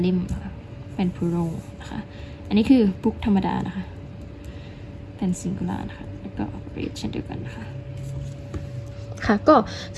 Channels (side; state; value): both; identical; correlation 1.00